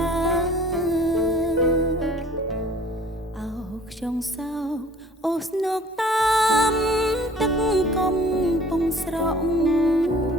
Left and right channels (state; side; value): normal; both; correlation 0.50